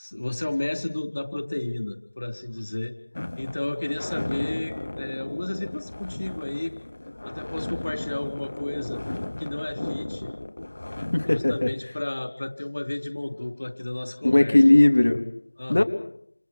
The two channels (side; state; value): both; inverted; correlation -1.00